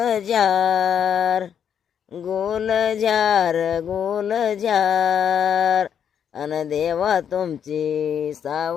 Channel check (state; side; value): quieter; right; 8.3 dB